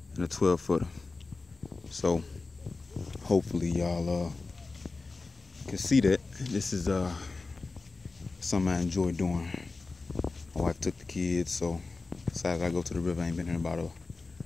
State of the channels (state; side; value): quieter; right; 3.7 dB